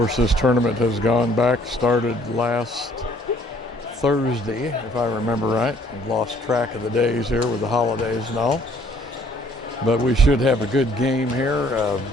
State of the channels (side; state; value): both; normal; correlation 0.60